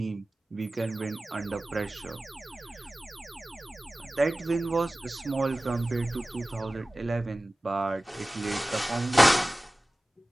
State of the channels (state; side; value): normal; both; correlation 0.97